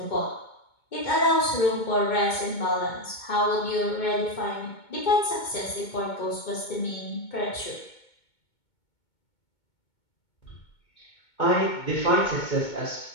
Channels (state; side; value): late; right; 2.2 ms